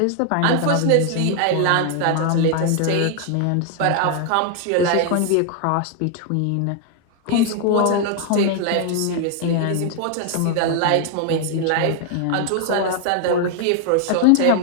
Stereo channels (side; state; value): both; different; correlation 0.00